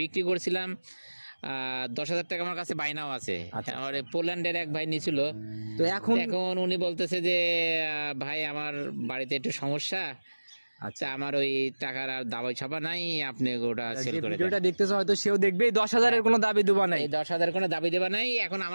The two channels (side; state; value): both; inverted; correlation -1.00